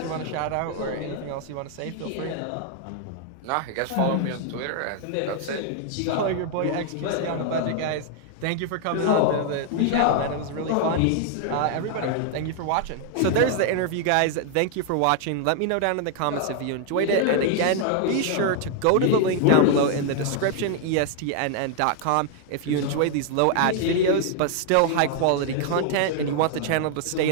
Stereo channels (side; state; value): both; different; correlation 0.00